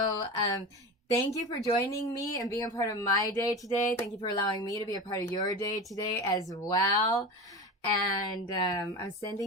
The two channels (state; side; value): normal; both; correlation 0.27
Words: thank you for joining me and being a part of my day today. Thank you for allowing me to be a part of your day today as well. And I'm